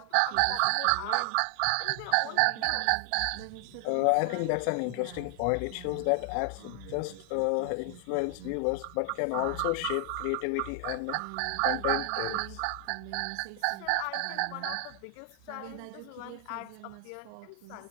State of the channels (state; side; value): different; both; correlation 0.00